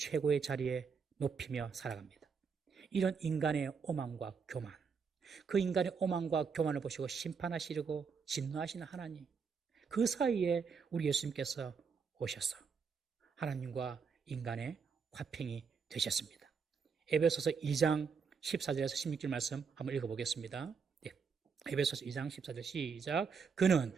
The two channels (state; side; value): quieter; left; 5.8 dB